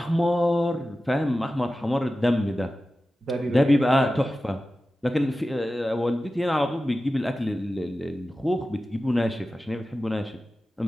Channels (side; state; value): both; normal; correlation 0.94